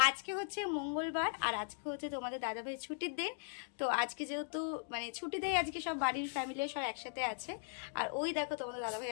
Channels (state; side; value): silent; right; digital silence